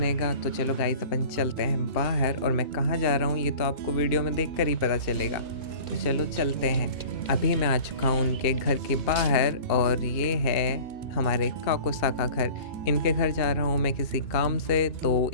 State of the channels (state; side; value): late; right; 2.7 ms